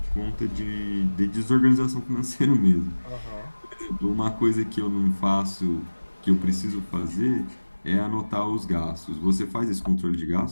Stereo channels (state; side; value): inverted; both; correlation -1.00